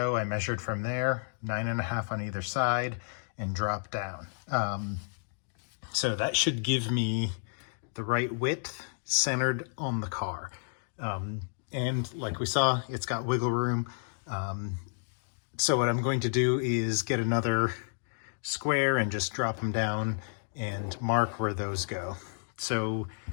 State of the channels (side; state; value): right; silent; digital silence